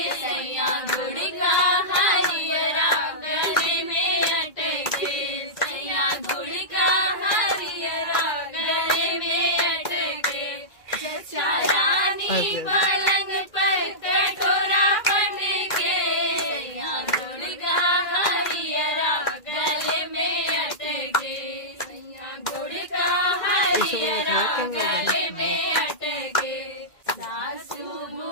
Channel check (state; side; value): late; right; 2.0 ms